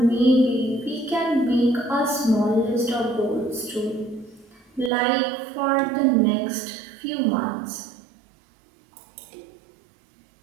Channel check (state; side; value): drops out; left; at 4.9 s